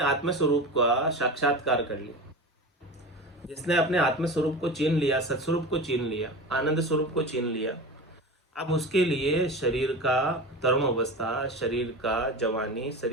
स्वरूप का साक्षात्कार कर लिया, जिसने अपने आत्म स्वरूप को चीन लिया, सत्स्वरूप को चीन लिया, आनंद स्वरूप को चीन लिया, अब उसके लिए शरीर का तरुण अवस्था, शरीर का जवानी,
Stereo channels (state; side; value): normal; both; correlation 0.29